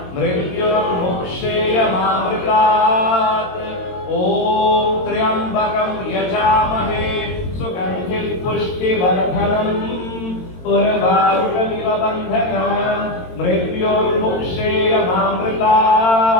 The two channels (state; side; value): late; right; 22 ms